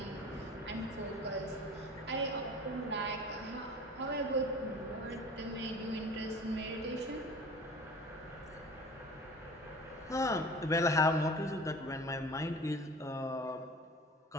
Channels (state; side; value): normal; both; correlation 0.40